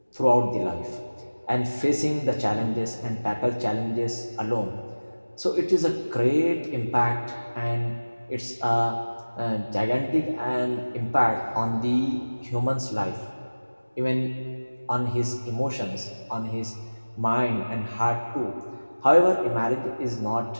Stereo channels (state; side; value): inverted; both; correlation -1.00